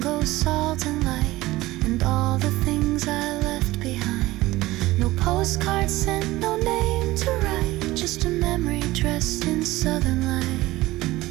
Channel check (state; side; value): quieter; left; 18.3 dB